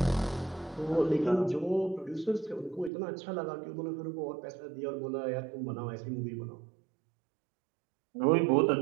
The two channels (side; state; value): left; drops out; at 2.9 s